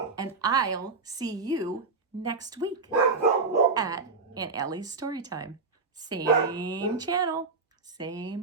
and I'll see you next week at Aunt Ellie's Storytime. Same channel,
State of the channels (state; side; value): quieter; left; 4.2 dB